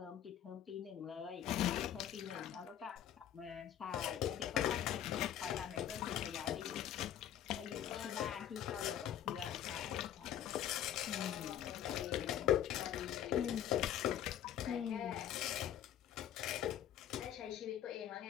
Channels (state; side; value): quieter; right; 10.6 dB